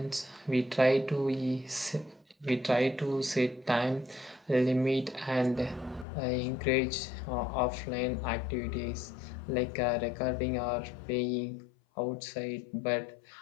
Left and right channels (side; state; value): right; drops out; at 6.1 s